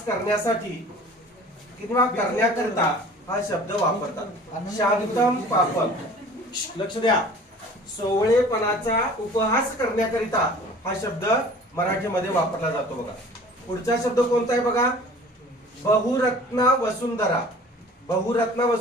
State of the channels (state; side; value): normal; both; correlation 0.46